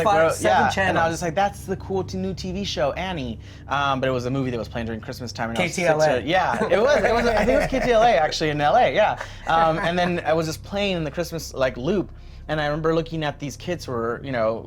like, channels. And I was just like, that's the cool new TV show, Annie. But it was a movie that was playing during Christmas time. And KTLA. Yeah, it was. I think it was KTLA actually in LA. Yeah. And then I was just playing in the Christmas loop. And I remember looking at these kids who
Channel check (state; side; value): identical; both; correlation 1.00